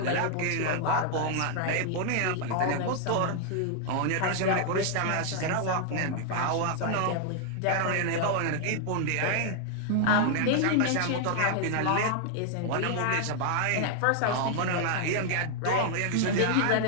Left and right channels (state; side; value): different; both; correlation 0.00